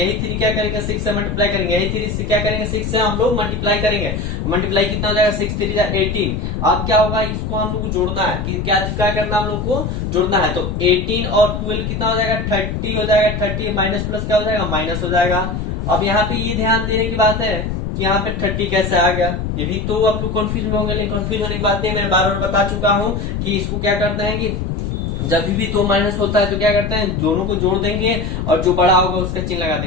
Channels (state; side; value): noise; left; rumble, 3 dB below the sound